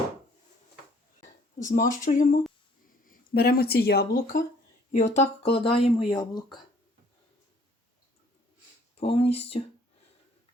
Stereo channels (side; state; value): both; normal; correlation 0.59